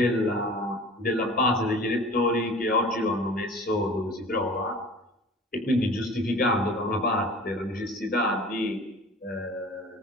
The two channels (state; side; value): normal; both; correlation 0.42